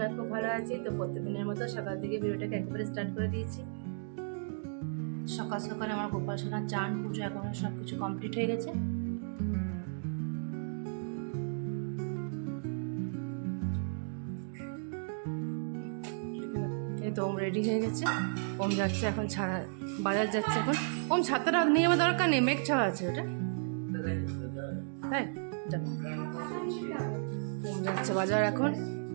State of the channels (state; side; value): silent; left; digital silence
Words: খুব ভালো আছি। তো প্রত্যেকদিনের মতো সকাল থেকে ভিডিওটাকে একেবারে স্টার্ট করে দিয়েছি। সকাল সকাল আমার গোপাল সোনার চান পুজো এখন সব কিছু কমপ্লিট হয়ে গেছে। এই তো ওম রেডি হয়ে গেছে, ওম যাচ্ছে এখন বাজার যাচ্ছে এখন। ওম ছাতাটা নিয়ে আমার দরকার নেই, মেঘ ছাওয়া আছে ওটা, তাই ওম যাচ্ছে বাজার এখন,